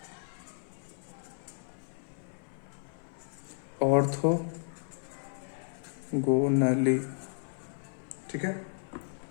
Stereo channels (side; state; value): right; silent; 56 dB below the other